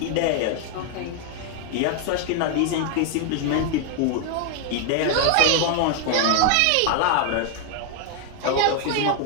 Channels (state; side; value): different; both; correlation 0.00